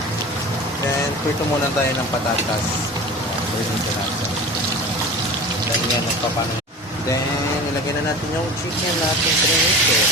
Then, prito muna tayo ng patatas. Prito natin. Then, yan, magpapano. Then, ilagyan na natin yung chicken natin prinito.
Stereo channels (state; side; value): normal; both; correlation 0.35